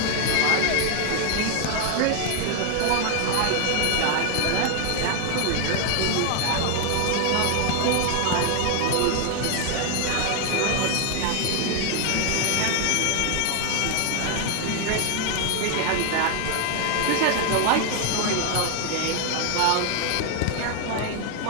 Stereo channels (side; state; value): both; different; correlation 0.00